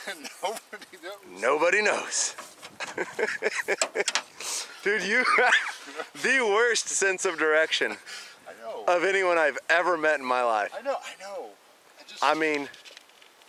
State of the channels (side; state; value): both; identical; correlation 1.00